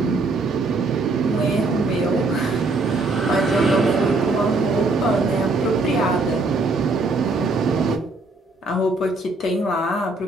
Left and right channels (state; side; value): quieter; left; 3.3 dB